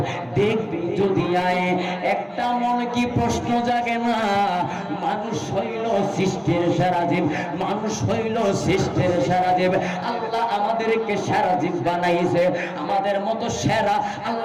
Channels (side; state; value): both; identical; correlation 1.00